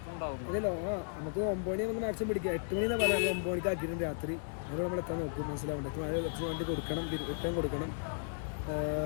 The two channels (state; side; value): silent; right; 54 dB below the other